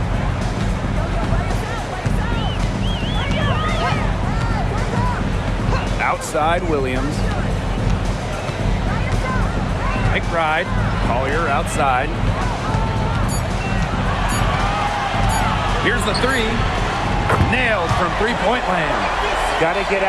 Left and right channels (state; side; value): identical; both; correlation 1.00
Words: Outside Williams. McBride. Collier outside. Here's the 3. Nailed from three-point land. Got to get